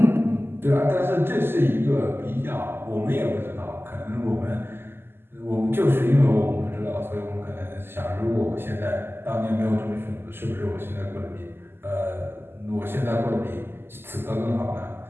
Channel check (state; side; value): late; left; 0.11 ms